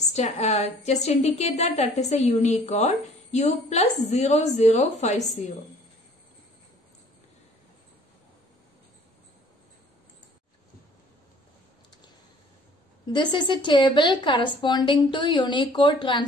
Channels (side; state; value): both; normal; correlation 0.54